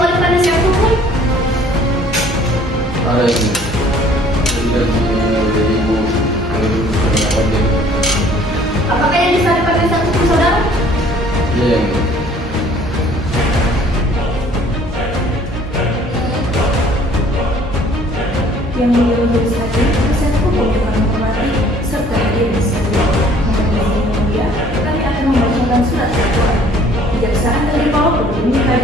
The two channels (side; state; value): both; normal; correlation 0.56